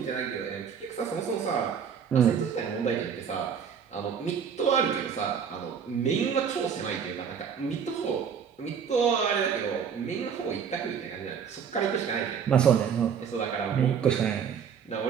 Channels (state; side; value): quieter; left; 7.2 dB